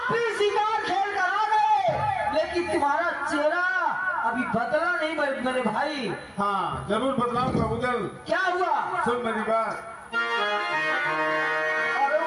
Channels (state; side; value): identical; both; correlation 1.00